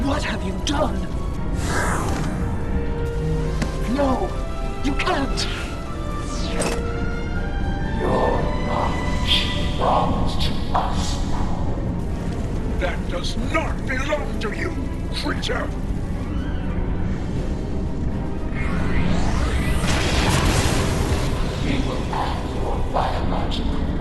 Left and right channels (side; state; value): both; identical; correlation 1.00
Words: what have you done? No, you can't. Your knowledge belongs to us. That does not belong to you, creature! We will add your biological